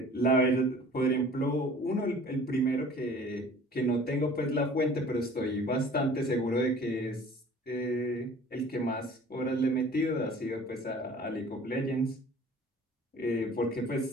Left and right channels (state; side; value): normal; both; correlation 0.48